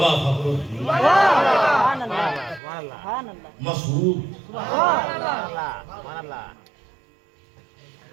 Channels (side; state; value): left; drops out; at 2.6 s